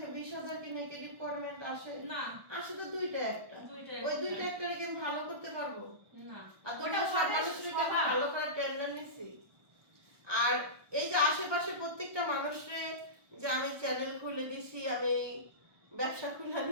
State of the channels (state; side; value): late; left; 1.2 ms